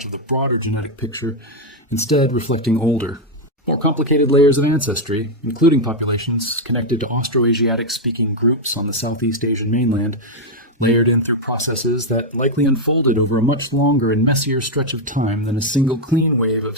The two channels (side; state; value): both; normal; correlation 0.01